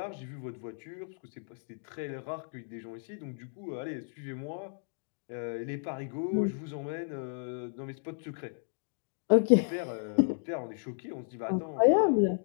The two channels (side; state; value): right; silent; digital silence